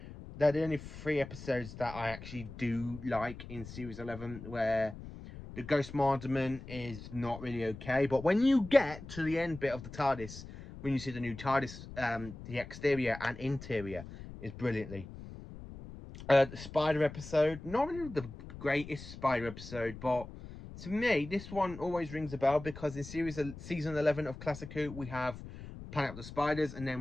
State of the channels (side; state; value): left; noise; rumble, 13 dB below the sound